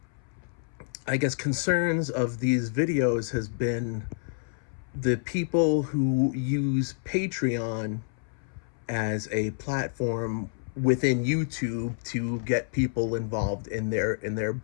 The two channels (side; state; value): right; silent; 59 dB below the other